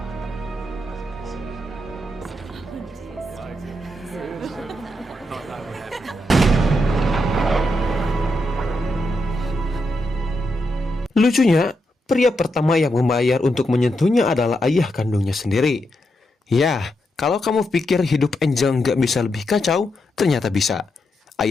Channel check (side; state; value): both; normal; correlation 0.83